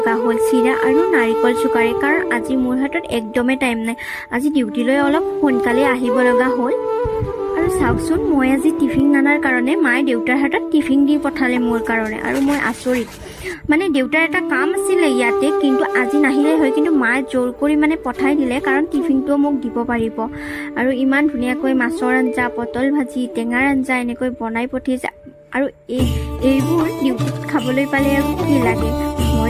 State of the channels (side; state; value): both; identical; correlation 1.00